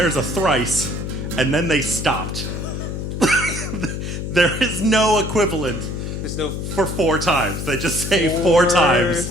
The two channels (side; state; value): left; noise; hum, 5 dB below the sound